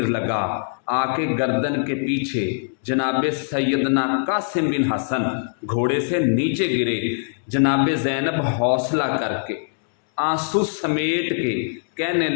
लगा, आके गर्दन के पीछे जनाबे सैयदना कासिम बिन हसन घोड़े से नीचे गिरे। जनाबे ज़ैनब हौसला करके आंसू समेट के कहने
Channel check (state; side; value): silent; right; digital silence